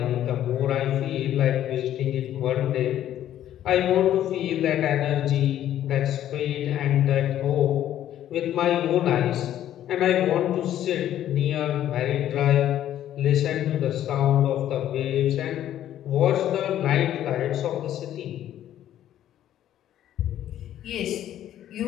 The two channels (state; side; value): quieter; right; 11.7 dB